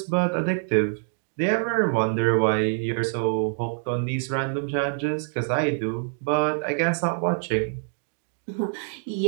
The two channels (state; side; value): silent; left; digital silence